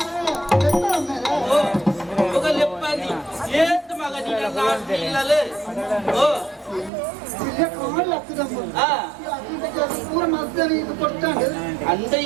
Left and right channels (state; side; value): drops out; left; at 6.9 s